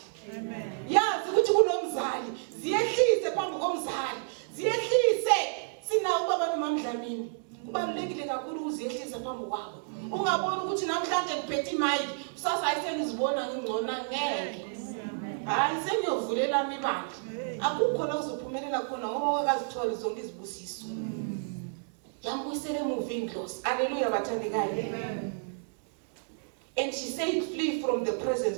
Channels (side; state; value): left; silent; digital silence